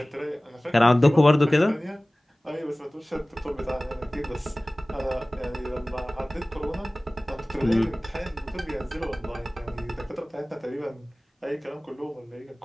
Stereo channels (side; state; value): both; normal; correlation 0.98